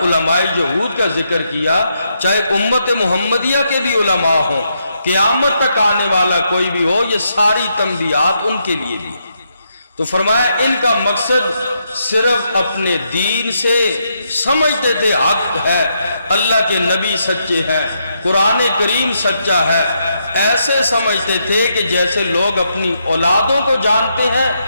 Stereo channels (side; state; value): both; inverted; correlation -0.79